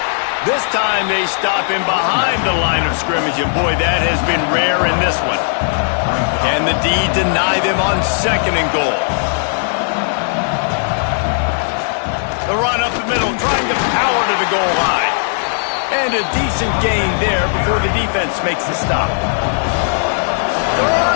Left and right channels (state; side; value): silent; right; digital silence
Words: This time they stop him behind the line of scrimmage, and boy, that has been rare in this one. Can the D deny them on 2nd and goal? The run up the middle, trying to power to the goal line. And a decent gain there before the defense makes the stop.